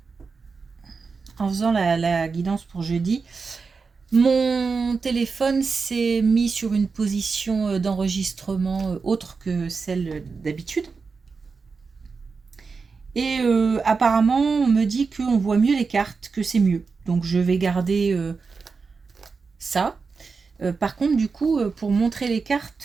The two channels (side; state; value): left; quieter; 4.8 dB